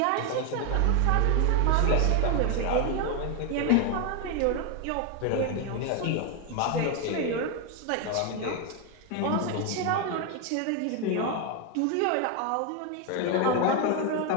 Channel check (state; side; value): different; both; correlation 0.01